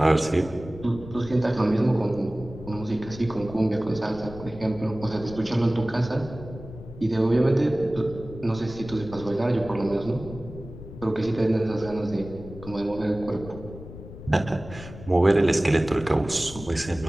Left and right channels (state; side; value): noise; left; rumble, 14 dB below the sound